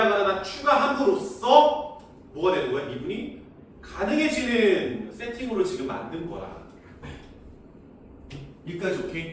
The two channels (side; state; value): both; identical; correlation 1.00